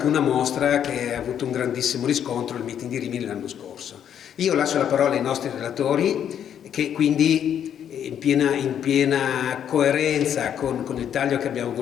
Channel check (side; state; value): right; quieter; 9.2 dB